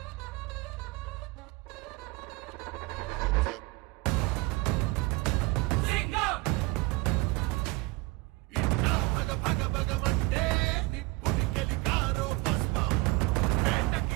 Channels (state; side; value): quieter; left; 23.3 dB